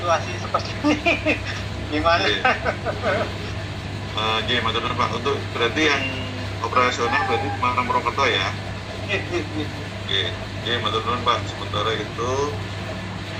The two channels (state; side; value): identical; both; correlation 1.00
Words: seperti ini gimana? Oke. Jadi matur nuwun Pak, untuk berarti yang operasional berarti Semarang Purwokerto ya? Oke, jadi matur nuwun Pak, sementara itu